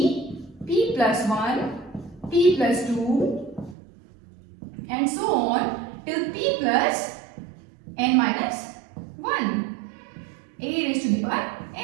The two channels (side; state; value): left; drops out; at 3.8 s